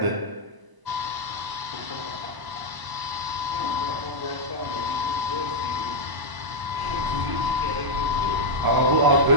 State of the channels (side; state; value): left; late; 1.0 ms